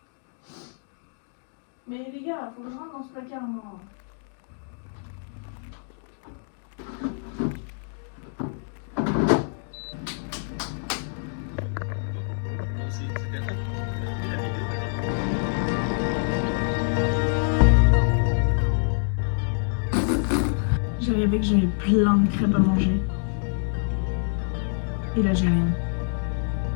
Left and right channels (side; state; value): right; silent; digital silence